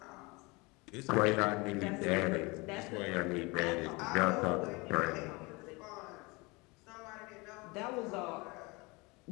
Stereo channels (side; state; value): right; quieter; 25.9 dB